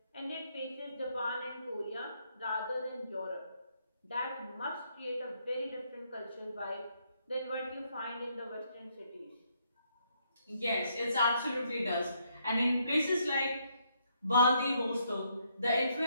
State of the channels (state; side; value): inverted; both; correlation -0.73